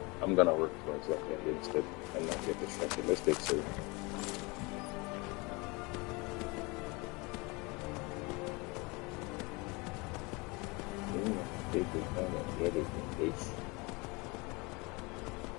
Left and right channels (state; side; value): quieter; right; 26.7 dB